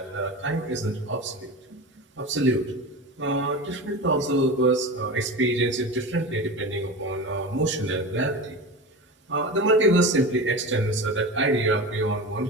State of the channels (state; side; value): normal; both; correlation 0.28